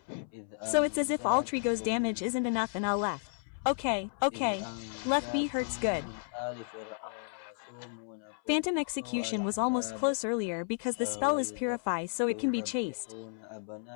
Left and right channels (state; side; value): silent; right; 56 dB below the other